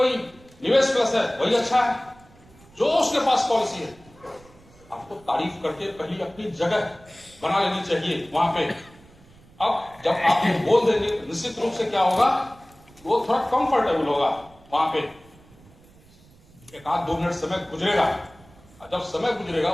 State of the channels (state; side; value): noise; right; rumble, 26 dB below the sound